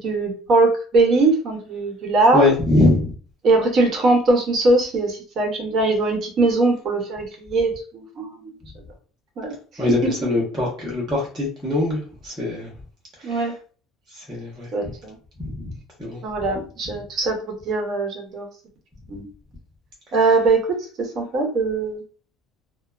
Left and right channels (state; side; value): normal; both; correlation 0.52